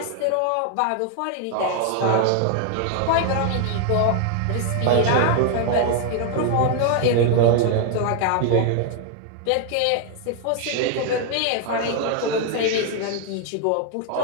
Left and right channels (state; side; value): different; both; correlation 0.00